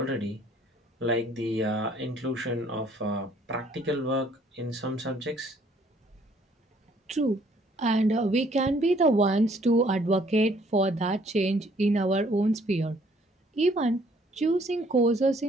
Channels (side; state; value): both; normal; correlation 0.62